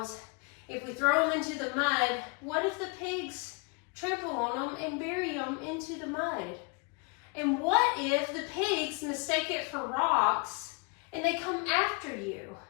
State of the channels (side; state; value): right; quieter; 33.9 dB